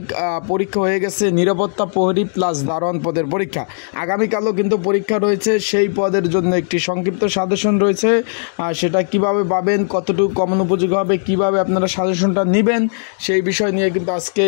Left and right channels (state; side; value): silent; right; digital silence